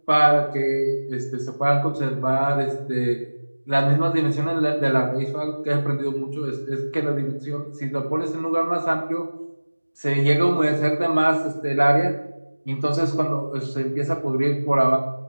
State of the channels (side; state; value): both; inverted; correlation -1.00